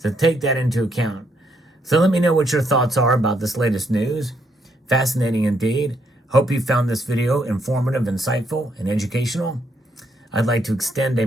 take that into account. So let me know what your thoughts are about this latest news. Fascinating indeed. Hope you found this video informative, insightful, and educational. I'd like to extend a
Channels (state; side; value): normal; both; correlation 0.74